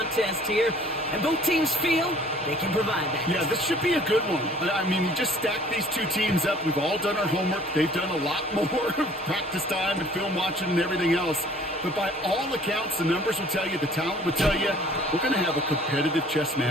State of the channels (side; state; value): both; normal; correlation 0.53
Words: here, and both teams feel they can provide that. Yeah, this should be a good one. I mean, you just stack these two teams up. We've all done our homework. They've done a lot more practice time and film watching and everything else. But by all accounts, the numbers will tell you, the talent will tell you, we're going to have a competitive chess